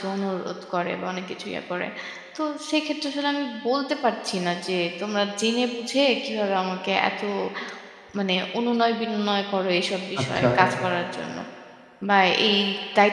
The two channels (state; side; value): identical; both; correlation 1.00